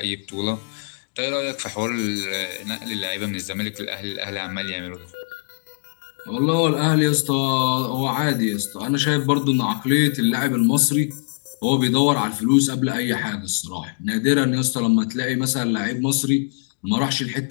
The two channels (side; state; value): right; silent; digital silence